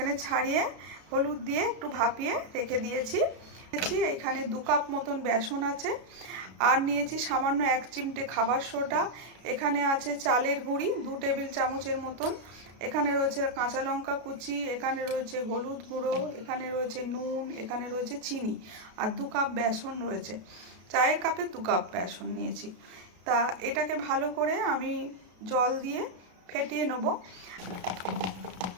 ছাড়িয়ে হলুদ দিয়ে একটু ভাপিয়ে রেখে দিয়েছি। এখানে 2 কাপ মতন বেসন আছে, আর নিয়েছি সামান্য 1 চিমটে খাবার সোডা। এখানে আছে চালের গুঁড়ি 2 টেবিল চামচের মতন। এখানে রয়েছে কাঁচা লঙ্কা কুচি, এখানে রয়েছে হলুদ গুঁড়ো, এখানে রয়েছে নুন, এখানে রয়েছে চিনি, আর 2 কাপ বেসন রয়েছে। চায়ের কাপে 2 কাপ বেসন নিয়েছি। তা এটাকে ভালো করে আমি জল দিয়ে ফেটিয়ে নেব।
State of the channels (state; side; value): late; left; 33 ms